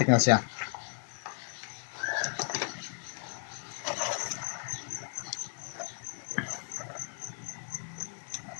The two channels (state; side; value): silent; right; 55 dB below the other